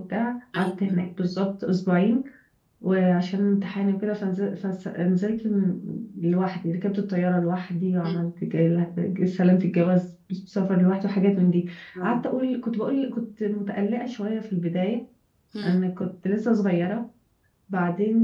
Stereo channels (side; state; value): both; identical; correlation 1.00